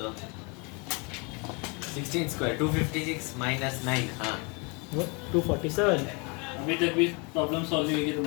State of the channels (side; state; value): right; quieter; 31.5 dB